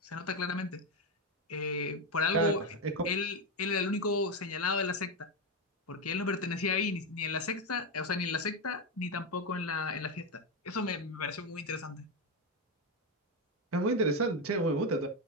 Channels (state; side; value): normal; both; correlation 0.09